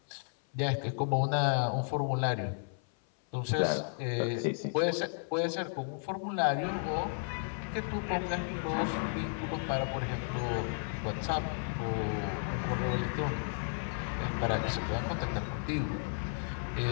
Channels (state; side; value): silent; right; 56 dB below the other